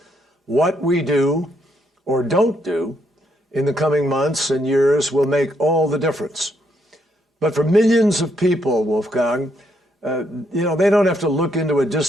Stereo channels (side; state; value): both; normal; correlation 0.75